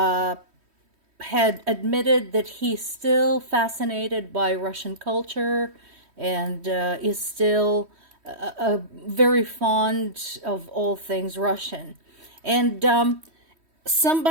admitted that he's still fascinated by Russian culture and is still very fond of all things Russian. And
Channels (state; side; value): late; left; 3.1 ms